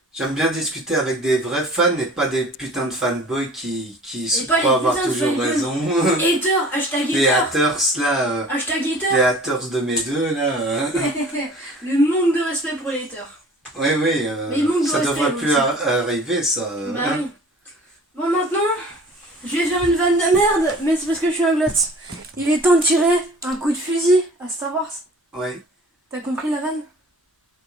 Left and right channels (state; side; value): normal; both; correlation 0.46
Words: J'aime bien discuter avec des vrais fans et pas des putains de fanboys qui Et pas les croient avoir putains de toujours fanboys. raison. Hater, hashtag Les hater. haters là, Hashtag les hater. haters de mes deux là. Le manque de respect pour les haters. Oui, oui, Mais il manque de ça respect devrait plus aussi. arriver ça. Bah Hein. oui. Bon, maintenant, je vais faire une vanne de merde, mais c'est parce que je suis un glotte. Il est temps de tirer un coup de fusil à Star Wars. Ouais. T'as compris la vanne?